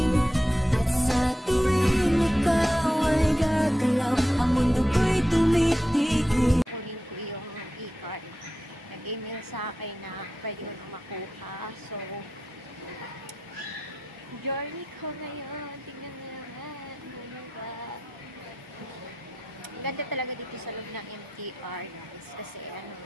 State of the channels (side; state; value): both; normal; correlation 0.89